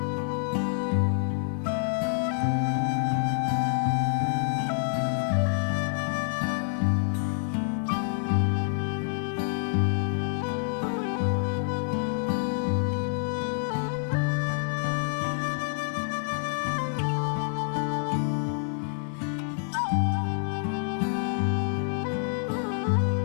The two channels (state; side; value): silent; right; digital silence